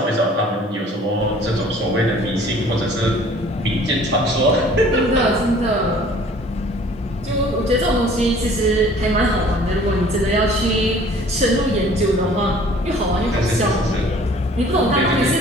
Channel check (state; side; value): normal; both; correlation 0.51